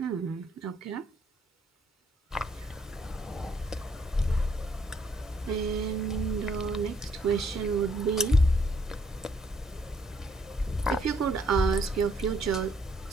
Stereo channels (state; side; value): normal; both; correlation 0.68